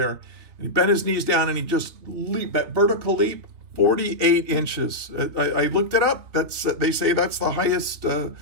and he bent his knees down and he just leaped, that vertical leap, 48 inches. I looked it up. They say that's the highest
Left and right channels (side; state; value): left; late; 3.4 ms